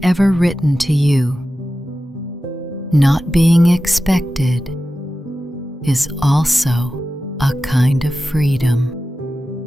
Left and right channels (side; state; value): both; normal; correlation 0.93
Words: ever written to you. Not being expected is also a kind of freedom.